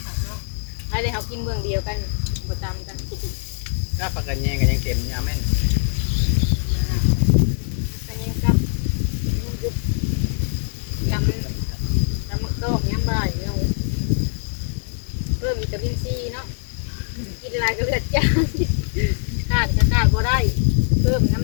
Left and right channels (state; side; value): silent; right; digital silence